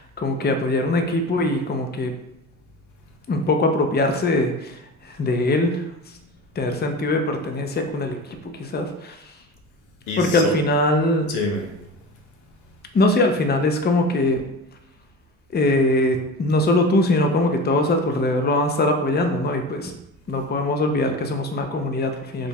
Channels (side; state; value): both; normal; correlation 0.32